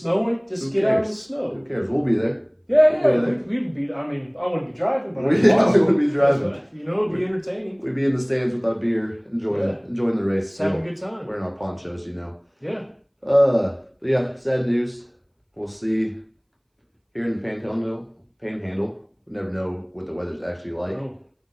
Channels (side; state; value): both; identical; correlation 1.00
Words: just get out of the snow. Who cares? We'll be there. We'd be, I wouldn't be driving, but we wouldn't be driving. You know, it'd be entertaining. We'd be in the stands with our beer, enjoying the race. Just having a good time. Wearing our ponchos, you know. Yeah. But yeah, sad news. We'll see here in the Panhandle. We never know what the weather's actually like. No.